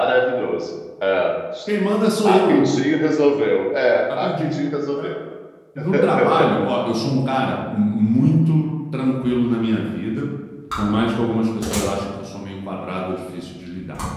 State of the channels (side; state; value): both; identical; correlation 1.00